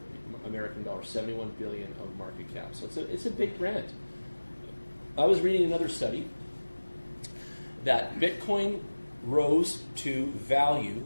American dollars, 71 billion of market cap. So it's a big brand. I was reading another study that Bitcoin rose to value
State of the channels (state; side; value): inverted; both; correlation -1.00